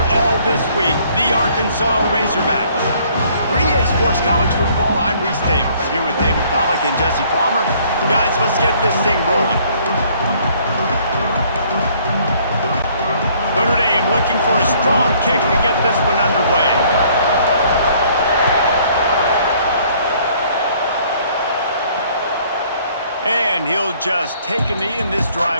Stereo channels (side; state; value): both; inverted; correlation -0.60